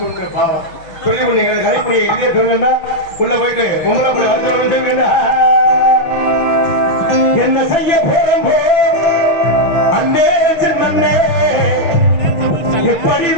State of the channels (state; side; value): late; right; 6.4 ms